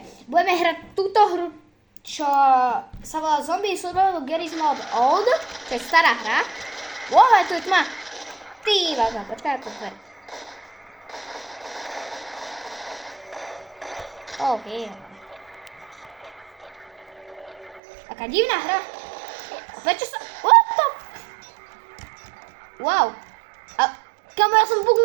budeme hrať túto hru, čo sa volá Zombie Survival Garry's Mod Old, čo je stará hra. Wow, tu je tma. Ty vážna, počkaj, to dver. OK. Taká divná hra. A prečo sa... What the... Wow. A kamo, ja som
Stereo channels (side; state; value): left; drops out; at 17.8 s